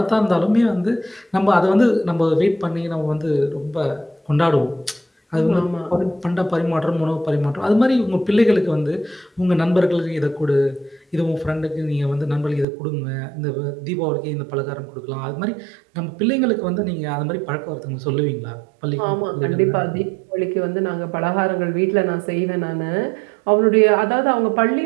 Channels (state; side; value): drops out; left; at 12.7 s